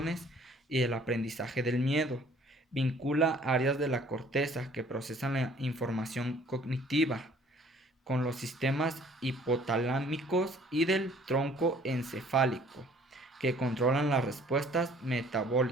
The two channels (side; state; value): both; normal; correlation 0.56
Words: y el aprendizaje del miedo. Vincula áreas de la corteza que procesan la información cognitiva con los sistemas hipotalámicos y del tronco encefálico, que controlan las respuestas